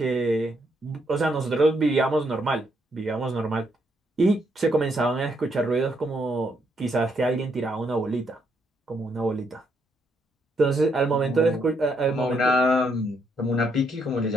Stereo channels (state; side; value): normal; both; correlation 0.75